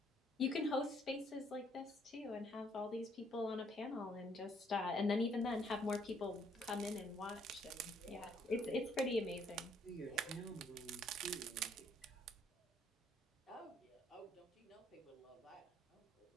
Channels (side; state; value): both; normal; correlation 0.66